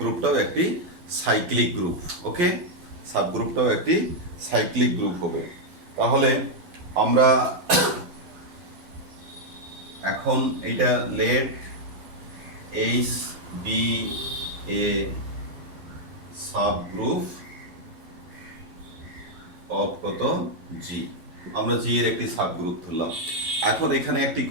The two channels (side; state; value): left; late; 11 ms